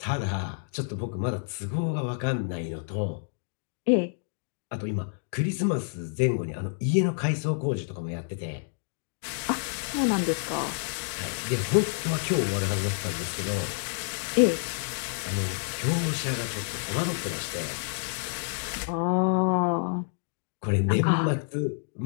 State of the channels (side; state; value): right; silent; digital silence